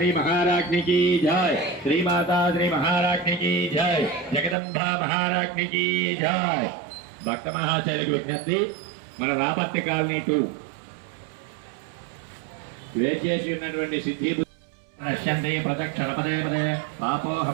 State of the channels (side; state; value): left; drops out; at 4.5 s